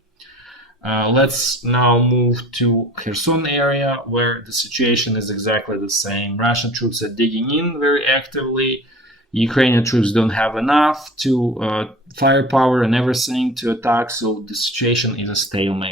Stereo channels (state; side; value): normal; both; correlation 0.42